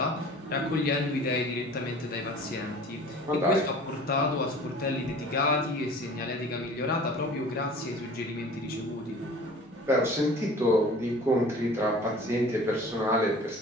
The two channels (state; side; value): normal; both; correlation 0.44